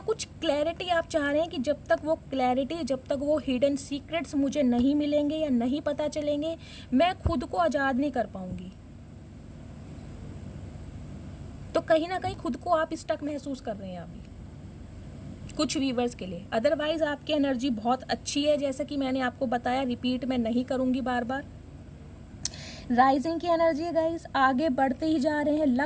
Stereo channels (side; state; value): both; identical; correlation 1.00